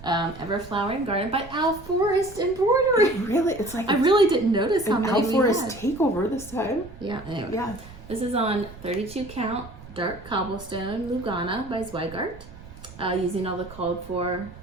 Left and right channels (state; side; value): noise; right; rumble, 17 dB below the sound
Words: Everflowering Garden by Al Forest Embroidery. Really? It's like I really didn't notice how many Al we Forest had. takeover this time. Yeah. Anyway. Yeah. This is on 32 count dark cobblestone Lugana by Zweigart, using all the called for